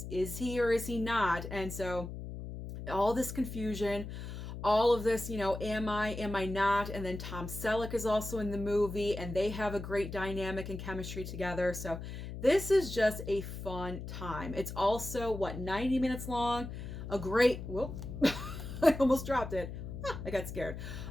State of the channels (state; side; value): noise; left; hum, 8 dB below the sound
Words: he or is he not? And so all this confusion, all of this, am I not? And then Tom Selleck is also in the movie, and they have a great dynamic and chemistry together. So This is just a fun time. It's also, what, 90 minutes long? A great, whoop, I almost dropped it. I got scared.